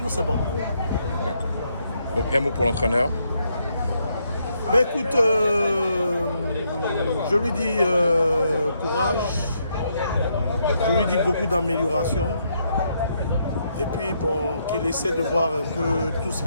c'est bon. D'accord. Donc, un mot pour l'entraîneur? Ben écoute, je lui dis courage, je lui dis beaucoup d'amélioration. Et puis bon, qu'il essaie de voir un peu tout ce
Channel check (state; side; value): inverted; both; correlation -0.76